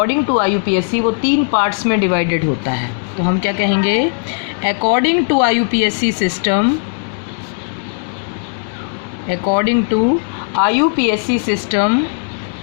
टू IUPAC वो 3 पार्ट्स में डिवाइडेड होता है। तो हम क्या कहेंगे, according to IUPAC system, according to IUPAC system,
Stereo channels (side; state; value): right; silent; digital silence